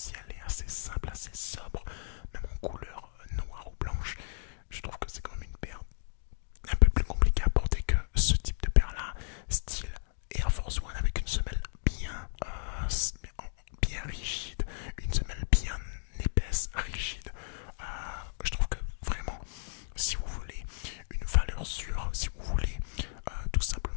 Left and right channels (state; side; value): silent; right; digital silence